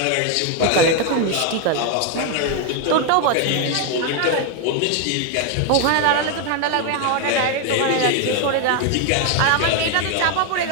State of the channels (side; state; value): both; different; correlation 0.01